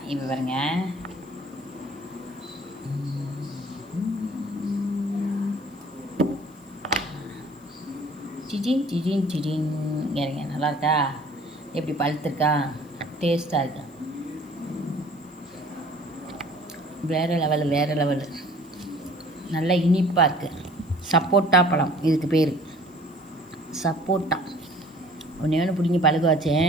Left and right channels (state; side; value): noise; left; hiss, 29 dB below the sound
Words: இப்போ பாருங்க, சிஜின் சிஜின் சிஜின் இறங்க. நல்லா இருக்கா? எப்படி பழுத்துருக்கா? டேஸ்ட்டாக இருக்கா? வேறு லெவலு நல்லா இனிப்பாக இருக்குது. சப்போட்டா பழம் இதுக்கு பேர், சப்போட்டா. ஒன்று பிடிங்கி பழுக்க